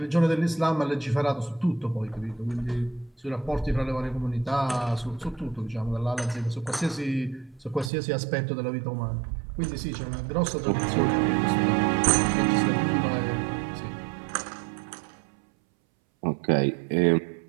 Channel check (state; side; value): drops out; left; at 7.9 s